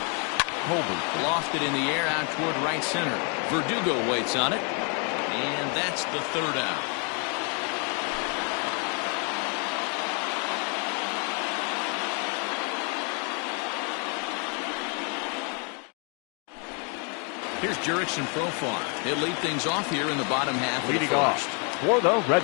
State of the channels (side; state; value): right; quieter; 37.5 dB